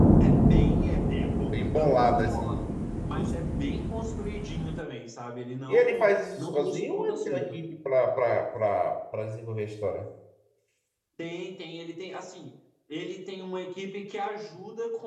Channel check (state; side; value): identical; both; correlation 1.00